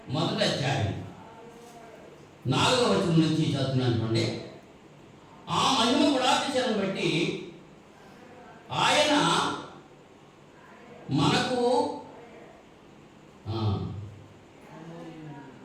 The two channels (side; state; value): both; identical; correlation 1.00